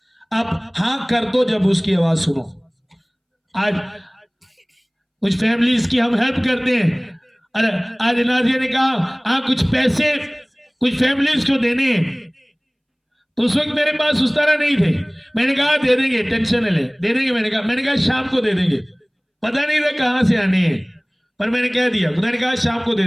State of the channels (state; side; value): identical; both; correlation 1.00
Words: आप हाँ कर दो जब उसकी आवाज सुनो। आज कुछ फैमिलीज की हम हेल्प करते हैं। अरे आज नाजिया ने कहा हाँ कुछ पैसे कुछ फैमिलीज को देने हैं, तो उस वक्त मेरे पास उस तरह नहीं थे। मैंने कहा दे देंगे, टेंशन ले दे देंगे। मैंने कहा शाम को दे देंगे। पता नहीं था कहां से आने हैं, पर मैंने कह दिया। खुदा ने कहा शाम को दे